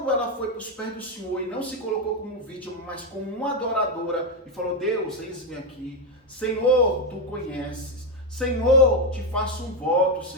ela foi para os pés do Senhor e não se colocou como vítima, mas como uma adoradora, e falou, Deus, eis-me aqui. Senhor, tu conheces. Senhor, te faço um voto,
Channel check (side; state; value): both; normal; correlation 0.07